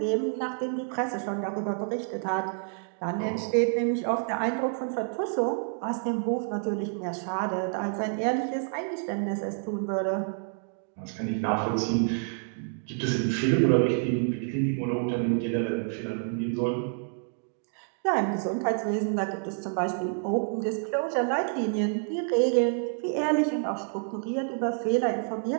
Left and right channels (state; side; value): silent; left; 59 dB below the other